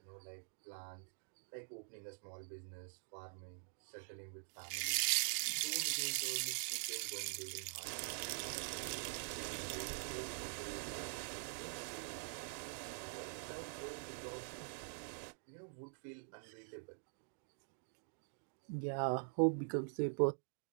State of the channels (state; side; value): silent; left; digital silence